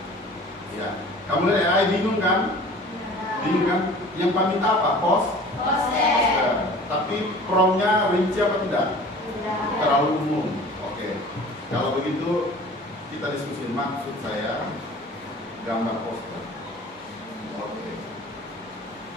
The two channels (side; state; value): both; normal; correlation 0.44